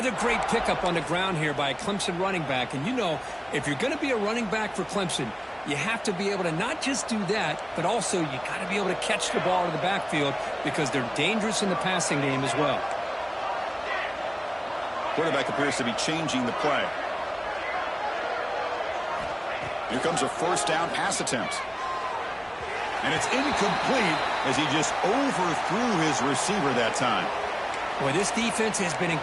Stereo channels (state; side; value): identical; both; correlation 1.00